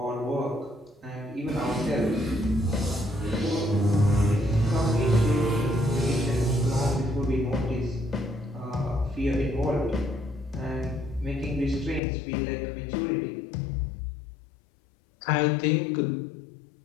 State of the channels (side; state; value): right; drops out; at 12.0 s